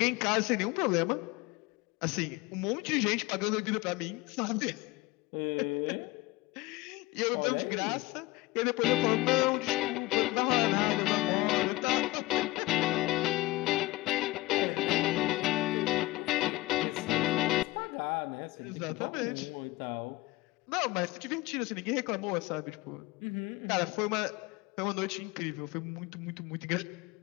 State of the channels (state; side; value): quieter; right; 20.3 dB